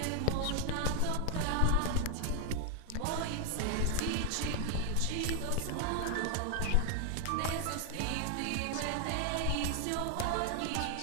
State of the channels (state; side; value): different; both; correlation 0.00